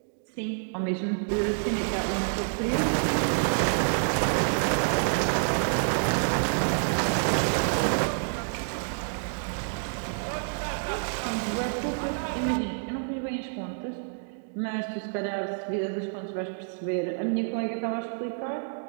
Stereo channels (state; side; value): silent; left; digital silence